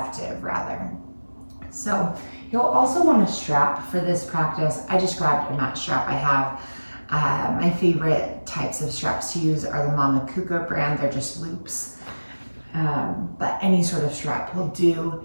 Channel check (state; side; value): inverted; both; correlation -1.00